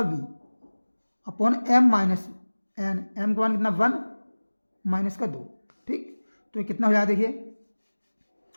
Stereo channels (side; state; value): both; inverted; correlation -1.00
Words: b upon m minus n, m का मान कितना 1 माइनस का 2। ठीक, तो ये कितना हो जाएगा देखिए,